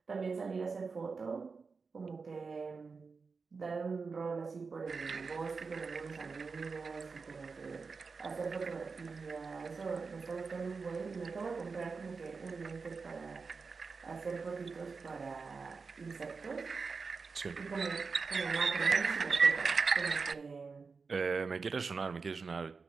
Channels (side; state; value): left; quieter; 4.7 dB